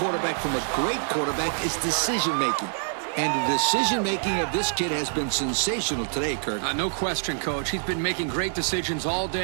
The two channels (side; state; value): left; silent; digital silence